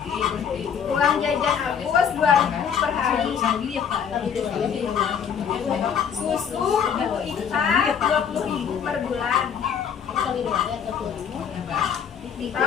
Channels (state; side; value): quieter; right; 7.6 dB